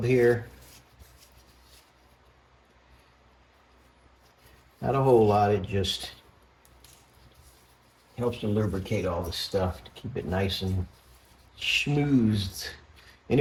here. Not a whole lot, it just helps to lubricate all this stuff to keep it nice and schmoozed.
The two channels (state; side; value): identical; both; correlation 1.00